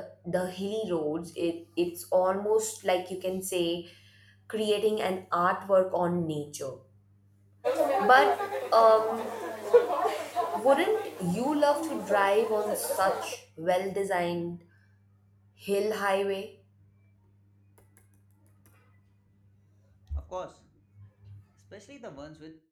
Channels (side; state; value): both; identical; correlation 1.00